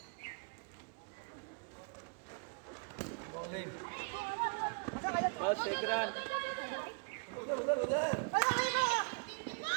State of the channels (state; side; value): quieter; left; 35.3 dB